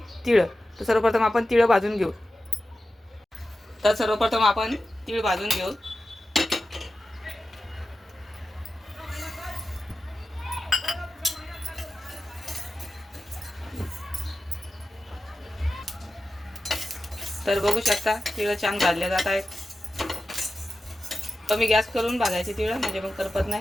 तीळ। तर सर्वप्रथम आपण तीळ भाजून घेऊ। तर सर्वप्रथम आपण तीळ भाजून घेऊ। तर बघू शकता तीळ छान भाजले जात आहेत। कमी गॅस करून भाजायचे तीळ, म्हणजे मग करपत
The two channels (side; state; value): both; normal; correlation 0.93